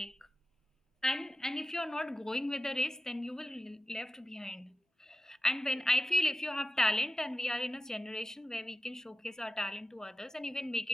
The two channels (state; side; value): normal; both; correlation 0.92